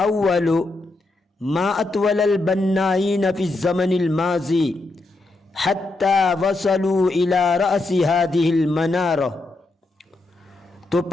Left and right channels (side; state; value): right; quieter; 3.0 dB